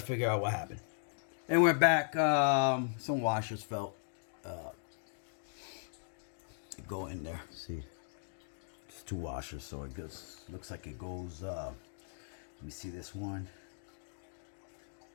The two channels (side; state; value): right; silent; digital silence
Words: out what happened. And we're back. Some washers fell. Go in there. See It's 2 washers, so it goes, looks like it goes, let me see this one.